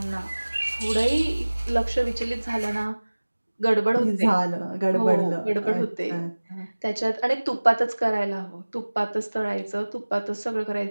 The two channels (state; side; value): inverted; both; correlation -1.00